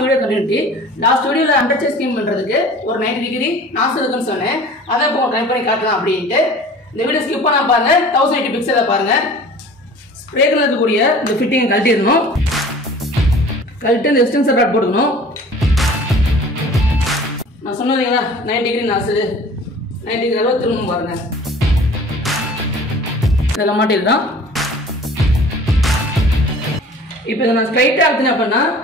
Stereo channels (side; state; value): both; normal; correlation 0.45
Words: வீடியோ கண்டினியூட்டி. லாஸ்ட் வீடியோல அண்டர் சேஸ் ஸ்கீம் பண்றதுக்கு ஒரு 90 டிகிரி நாசல் இருக்குன்னு சொன்னேன். அதை இப்போ ட்ரை பண்ணி காட்டலாம் அப்படின்ட்டு இந்த வீடியோ ஸ்கிப் பண்ணாம பாருங்க. 1080 பிக்சலை பாருங்க. ஸ்ப்ரேக்கர்ல இருக்கக்கூடிய இந்த ஃபிட்டிங் கழட்டிடணும். கழட்டி இந்த எக்ஸ்டென்சர் ராட் போட்டுக்கணும். நான் சொன்னீங்களா 90 டிகிரி நாசல் 90 டிகிரி அளவு திரும்பவும் பாருங்க. இதெல்லாம் மாட்டிடலாம். இப்போ இதை நான் ஸ்ட்ரைட்டாக எடுத்தேன் அப்படின்னா